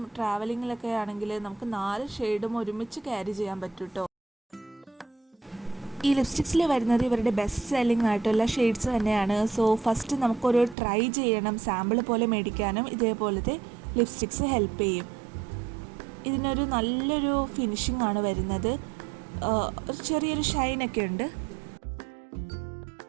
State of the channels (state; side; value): drops out; left; at 10.8 s